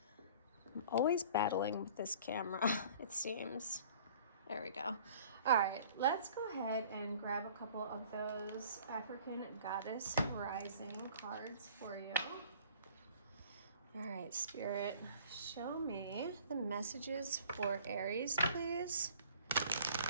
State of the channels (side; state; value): both; inverted; correlation -0.50